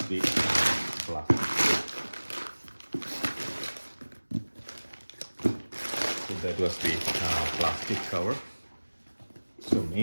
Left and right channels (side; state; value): both; inverted; correlation -1.00